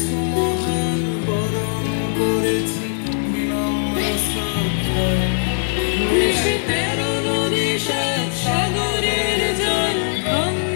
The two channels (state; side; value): silent; right; 59 dB below the other